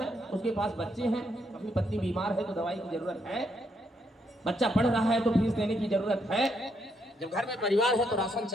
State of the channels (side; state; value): both; normal; correlation 0.76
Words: उसके पास बच्चे हैं। कभी पत्नी बीमार है तो दवाई की जरूरत है, बच्चा पढ़ रहा है तो फीस देने की जरूरत है, जब घर में परिवार है तो राशन